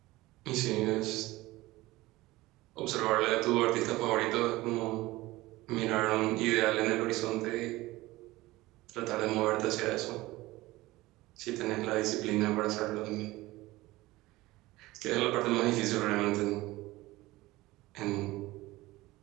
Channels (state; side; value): quieter; left; 19.0 dB